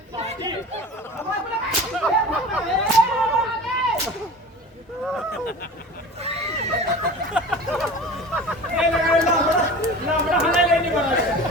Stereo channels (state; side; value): normal; both; correlation 0.37